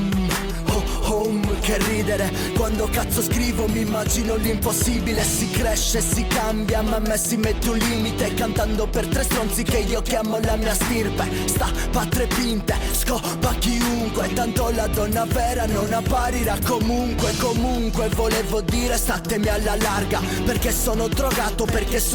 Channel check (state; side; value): identical; both; correlation 1.00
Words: Home, che ridere, quando cazzo scrivo mi immagino l'impossibile. Si cresce, si cambia, ma a me si mette un limite, cantando per tre stronzi che io chiamo la mia stirpe. Sta patre pinte, scopa chiunque, tanto la donna vera non apparirà comunque. Comunque volevo dire statemi alla larga, perché sono drogato, perché